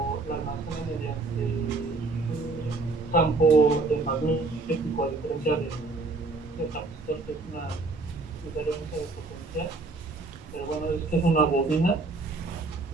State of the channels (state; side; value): quieter; left; 3.5 dB